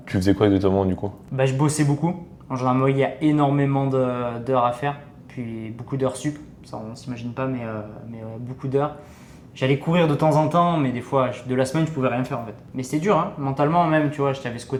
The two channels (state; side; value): identical; both; correlation 1.00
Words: Tu faisais quoi exactement du coup? Bah, je bossais beaucoup. En gendarmerie, il y a énormément d'heures à faire, puis beaucoup d'heures sup. Ça, on ne s'imagine pas, mais beaucoup d'heures. J'allais courir de temps en temps, mais des fois, de la semaine, je pouvais rien faire en fait. Mais c'était dur, hein, mentalement même, tu vois, j'avais ce